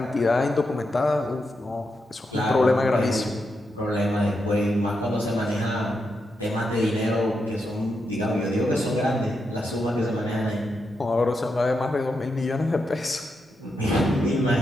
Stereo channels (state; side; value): normal; both; correlation 0.84